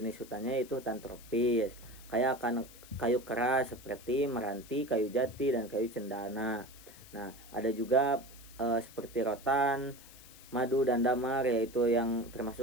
hutannya itu hutan tropis. Kaya akan kayu keras seperti meranti, kayu jati, dan kayu cendana. Nah, ada juga seperti rotan, madu, dan damar, yaitu yang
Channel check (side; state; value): left; noise; hiss, 20 dB below the sound